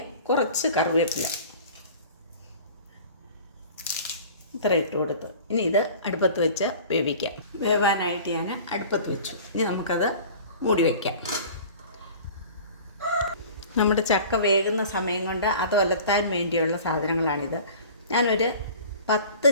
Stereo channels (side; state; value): both; inverted; correlation -0.43